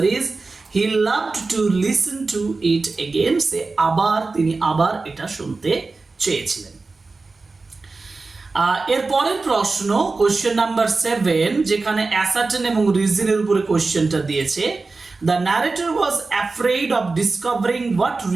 is he loved to listen to it again. সে আবার তিনি আবার এটা শুনতে চেয়েছিলেন। এর পরের প্রশ্ন কোশ্চেন নাম্বার 7, যেখানে অ্যাসার্টেন এবং রিজনের উপরে কোশ্চেনটা দিয়েছে। The narrator was afraid of discovering what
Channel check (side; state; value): left; quieter; 3.8 dB